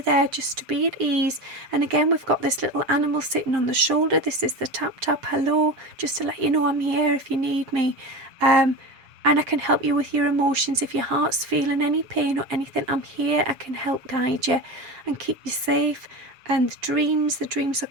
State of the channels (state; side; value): late; left; 7.1 ms